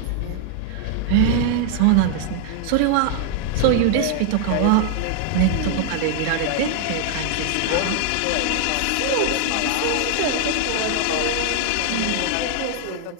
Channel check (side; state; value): both; different; correlation 0.00